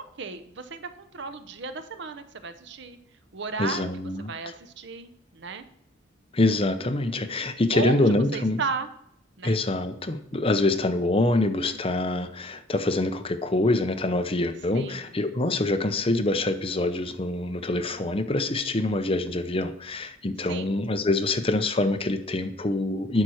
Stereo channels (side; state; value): both; normal; correlation 0.57